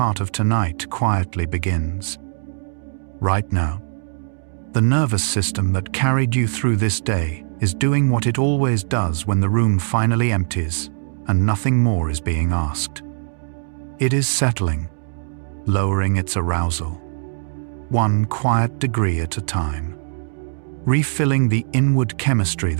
of tonight quietly begins. Right now, the nervous system that carried you through this day is doing what it always does when the room finally empties and nothing more is being asked. It is settling, lowering its arousal, one quiet degree at a time, refilling the inward chemistry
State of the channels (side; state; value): left; silent; digital silence